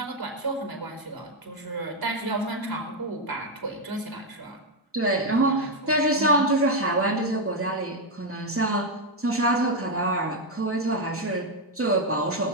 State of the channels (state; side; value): normal; both; correlation 0.03